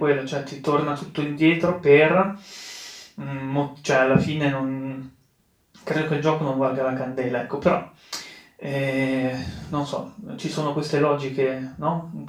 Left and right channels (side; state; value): both; identical; correlation 1.00